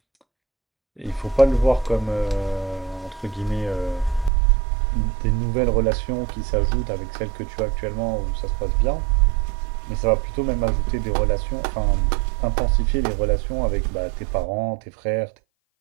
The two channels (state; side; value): drops out; left; at 4.3 s